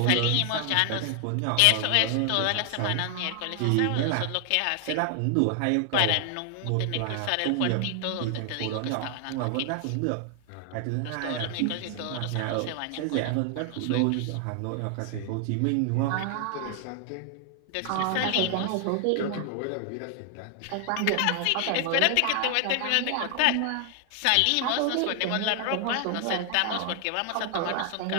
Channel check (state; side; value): different; both; correlation 0.00